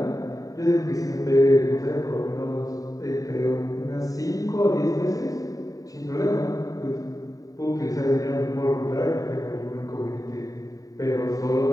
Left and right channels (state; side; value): late; right; 0.17 ms